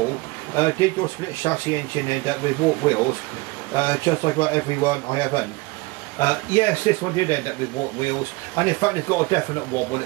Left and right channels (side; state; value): left; quieter; 23.6 dB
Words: did your split chassis engine end up with warped wheels, just like about everyone I have owned? Yes, this one did end up with warped wheels, and in fact it's got a definite wobble